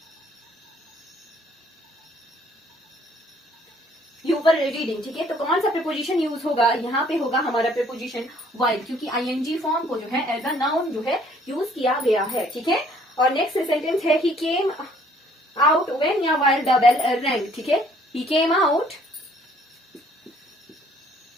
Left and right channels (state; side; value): normal; both; correlation 0.60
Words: यूवर रीडिंग, ठीक है। तो कौन सा प्रीपोजिशन यूज होगा, यहाँ पे होगा हमारा प्रीपोजिशन वाइल, क्योंकि आईएनजी फॉर्म को जो है एज अ नाउन जो है यूज किया गया है, ठीक है। और नेक्स्ट सेंटेंस है ही केम आउट व्हेन या वाइल द बेल रैंग, ठीक है। ही केम आउट